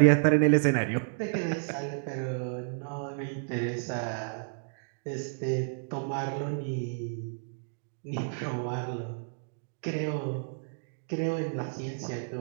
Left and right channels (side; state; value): left; silent; digital silence